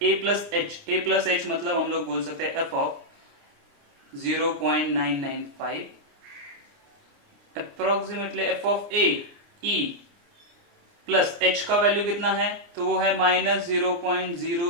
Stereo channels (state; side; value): late; left; 29 ms